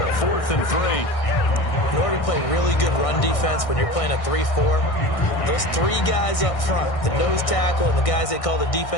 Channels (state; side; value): late; right; 1.6 ms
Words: 4th and 3. In order to play really good run defense when you're playing a 3-4, those 3 guys up front, the nose tackle and the guys they call the